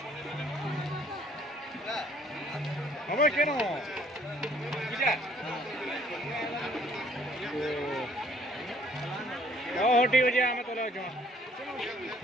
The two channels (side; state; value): both; normal; correlation 0.60